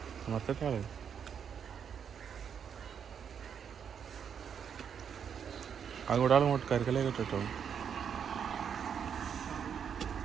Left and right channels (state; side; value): quieter; left; 7.6 dB